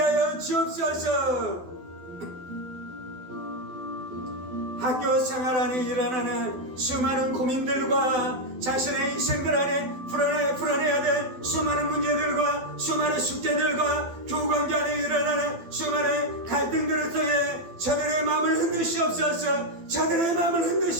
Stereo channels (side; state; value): left; late; 12 ms